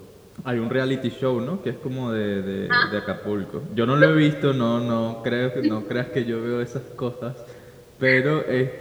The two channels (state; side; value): identical; both; correlation 1.00